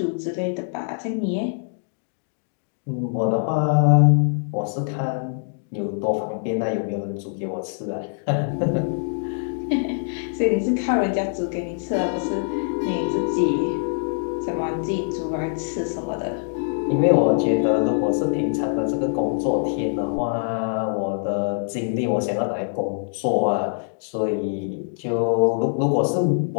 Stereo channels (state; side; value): silent; right; digital silence